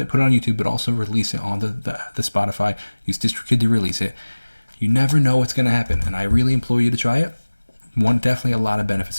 put it on YouTube, but also release it on the Spotify. Use Distrokid to release it. You never know what's going to happen, and I really implore you to try it. Definitely a lot of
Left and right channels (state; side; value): inverted; both; correlation -1.00